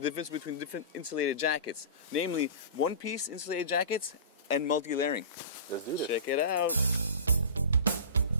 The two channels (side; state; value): both; inverted; correlation -0.33